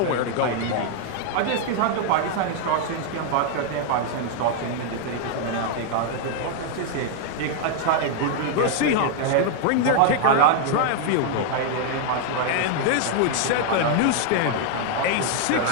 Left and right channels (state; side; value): different; both; correlation 0.00